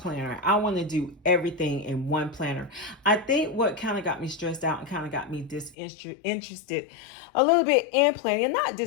I want to do everything in one planner. I think what kind of got me stressed out and kind of got me disinterested a little bit in planning, and not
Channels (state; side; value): drops out; right; at 5.8 s